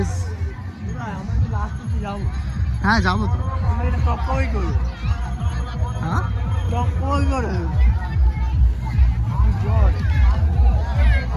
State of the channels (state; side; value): identical; both; correlation 1.00